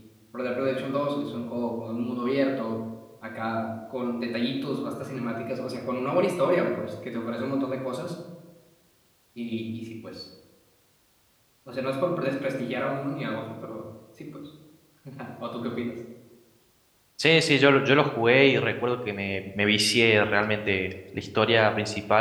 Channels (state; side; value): identical; both; correlation 1.00